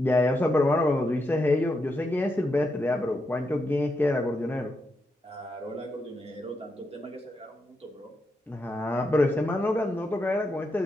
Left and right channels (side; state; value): both; normal; correlation 0.84